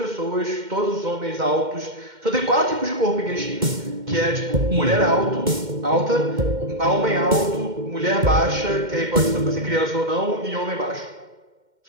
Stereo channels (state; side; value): late; left; 2.1 ms